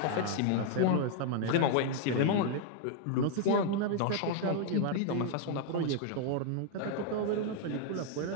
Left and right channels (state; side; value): different; both; correlation 0.00